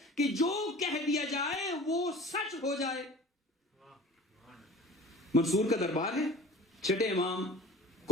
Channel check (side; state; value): both; normal; correlation 0.42